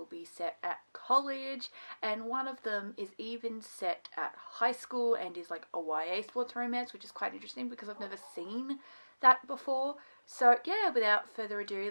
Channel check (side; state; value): both; inverted; correlation -1.00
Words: be set at college, and one of them is even set at high school and is like a YA sports romance, which is quite interesting because I've never seen that before. So yeah, without further ado,